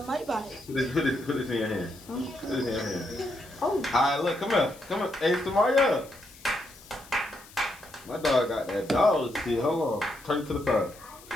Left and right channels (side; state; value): left; noise; hiss, 21 dB below the sound